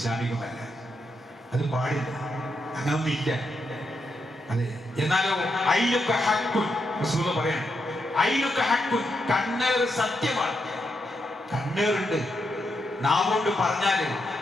അത് പാടില്ല, അങ്ങനൊന്നും ഇല്ല. അതെ, എന്നാലോ അയിലൊക്കെ ഹക്കുൻ റസൂൽ പറയാണ്, അയിലൊക്കെ ഹക്കുൻ, കണ്ണേർ സത്യമാണ്. കണ്ണേറുണ്ട്. നാവുകൊണ്ട് പറഞ്ഞാല്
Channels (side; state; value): both; normal; correlation 0.82